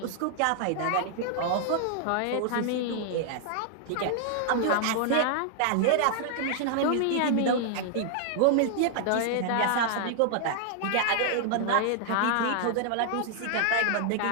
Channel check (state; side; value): different; both; correlation -0.01